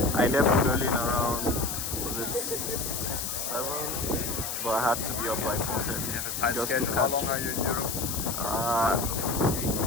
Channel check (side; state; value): left; noise; hiss, 4 dB below the sound